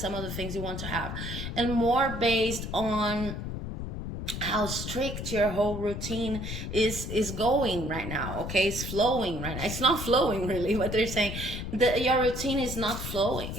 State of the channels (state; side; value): noise; left; rumble, 6 dB below the sound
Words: of the things you want to have, and more based on how strict your whole routine is going right now. Okay, it's flowing right now. It's not flowing really, what they're saying. Your routine is not flowing.